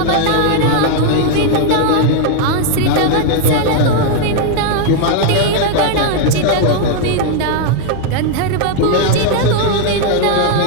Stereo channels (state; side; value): different; both; correlation 0.00